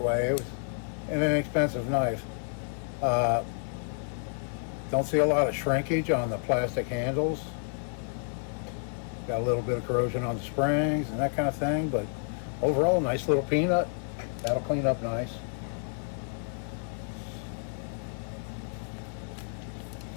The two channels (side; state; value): right; silent; 58 dB below the other